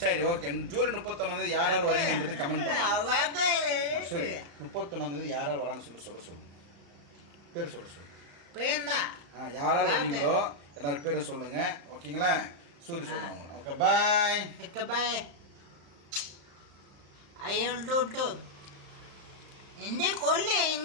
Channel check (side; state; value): left; late; 35 ms